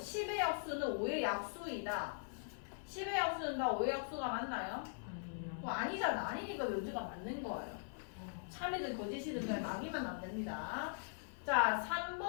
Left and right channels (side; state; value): right; silent; 50 dB below the other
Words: 약수는 5의 약수이다. 10의 약수는 다 5의 약수가 맞나요? 아니잖아. 아니니까 명제가 맞는 거예요. 참이든 거짓이든 그냥 막이면 안 됩니다. 자